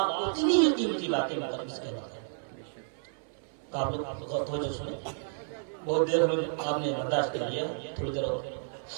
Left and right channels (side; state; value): left; silent; 57 dB below the other